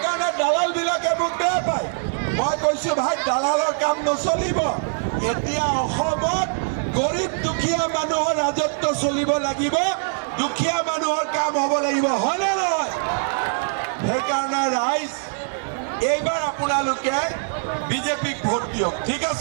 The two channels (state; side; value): silent; left; digital silence